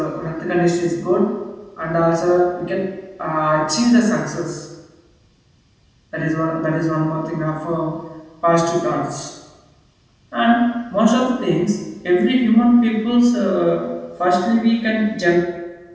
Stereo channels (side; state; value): both; identical; correlation 1.00